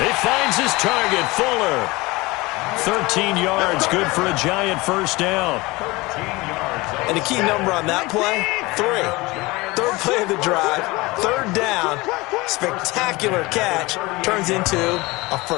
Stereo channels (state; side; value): quieter; right; 22.4 dB